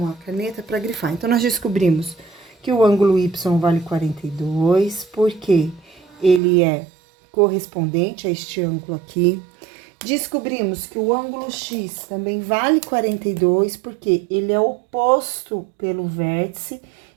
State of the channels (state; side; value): drops out; left; at 6.4 s